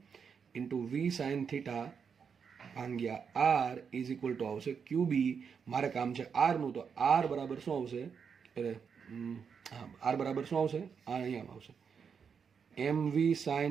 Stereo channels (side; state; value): left; quieter; 6.5 dB